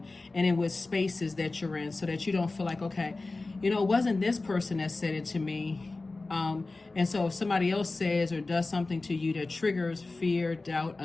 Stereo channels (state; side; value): quieter; right; 3.4 dB